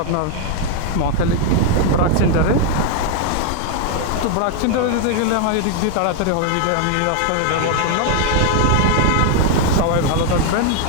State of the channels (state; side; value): different; both; correlation 0.00